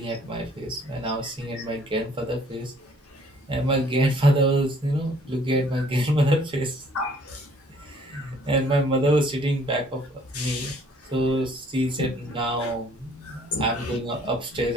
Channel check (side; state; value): both; normal; correlation 0.58